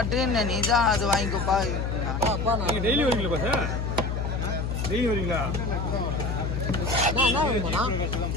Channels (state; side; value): noise; left; hum, 2 dB below the sound